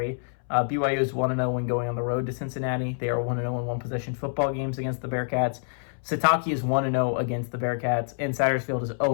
BYU is 1-0 when going on the road to Cincinnati. They are 1-0 in one-possession football games against the Bearcats. Sataki is 1-0 against the Bearcats, and Satterfield is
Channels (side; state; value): right; silent; 60 dB below the other